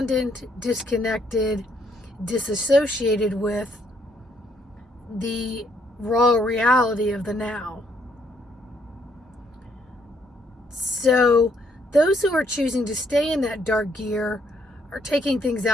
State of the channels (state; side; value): normal; both; correlation 0.70